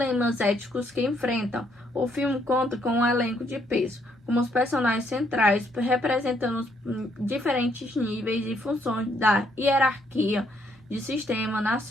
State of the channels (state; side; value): normal; both; correlation 0.71